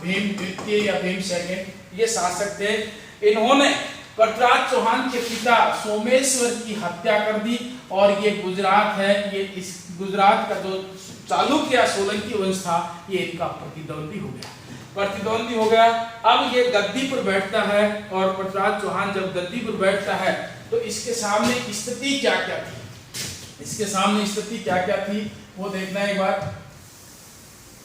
भीम द्वितीय या भीम सेकंड, ये शासक थे। इन्होंने पृथ्वीराज चौहान के पिता सोमेश्वर की हत्या कर दी, और ये गुजरात है, ये इस गुजरात का जो चालुक्य या सोलंकी वंश था, ये इनका प्रतिद्वंदी हो गया, प्रतिद्वंदी हो गया। अब ये गद्दी पर बैठता है, और पृथ्वीराज चौहान जब गद्दी पर बैठता है तो इसके सामने स्थिति क्या क्या थी, इसके सामने स्थिति क्या क्या थी वो देखना है एक बार।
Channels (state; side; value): identical; both; correlation 1.00